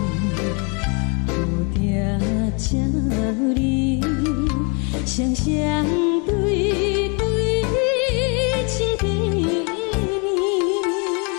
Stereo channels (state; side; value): quieter; right; 33.7 dB